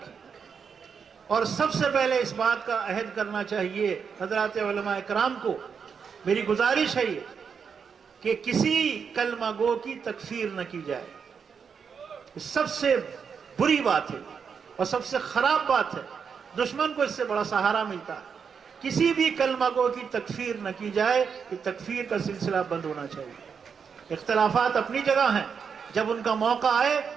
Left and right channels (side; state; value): left; quieter; 6.4 dB